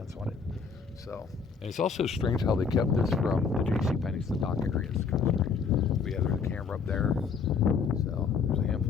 on it. So, and it's also strange how they kept this from the JCPenney's, the dock area. It's kind of strange. But yeah, there's a camera up there. So there's a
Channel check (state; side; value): quieter; right; 5.6 dB